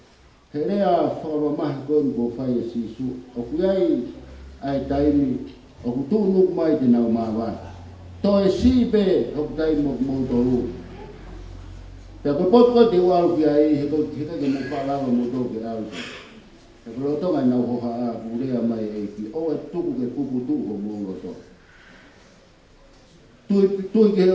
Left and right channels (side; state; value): both; identical; correlation 1.00